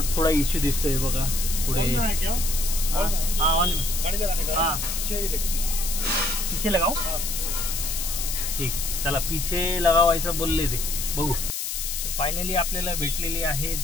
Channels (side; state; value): left; noise; hiss, 3 dB below the sound